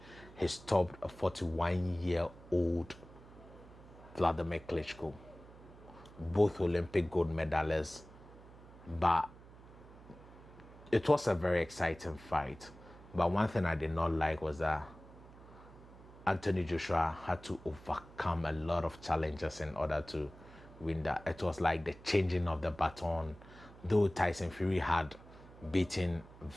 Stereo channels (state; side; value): noise; right; hum, 20 dB below the sound